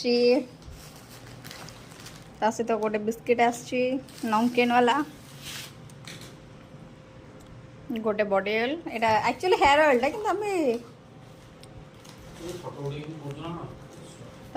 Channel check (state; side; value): identical; both; correlation 1.00